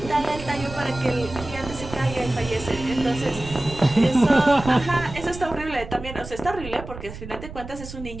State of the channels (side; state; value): right; noise; rumble, 12 dB below the sound